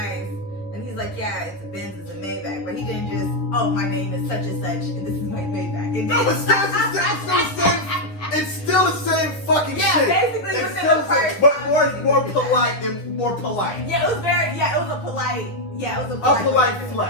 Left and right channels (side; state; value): right; late; 10 ms